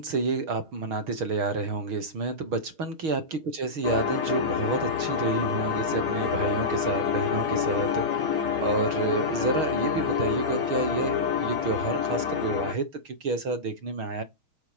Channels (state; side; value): late; left; 6.4 ms